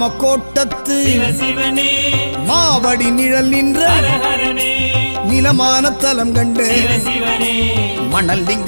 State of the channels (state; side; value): inverted; both; correlation -1.00